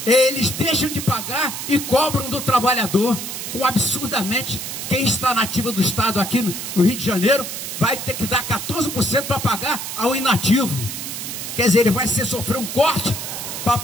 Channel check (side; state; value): right; noise; hiss, 6 dB below the sound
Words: Eles deixam de pagar e cobram do trabalhador, com absurdamente, quem está na ativa do Estado aqui no Rio de Janeiro vai ter que dar 14% para pagar ao inativo. Quer dizer, ele vai sofrer um corte para